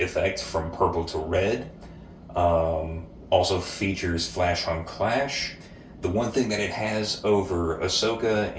from purple to red. Also features flash on clash. The one thing that it has over Ahsoka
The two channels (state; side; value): identical; both; correlation 1.00